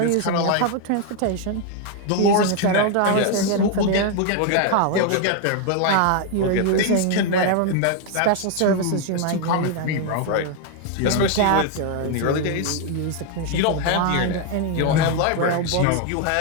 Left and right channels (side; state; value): both; different; correlation 0.01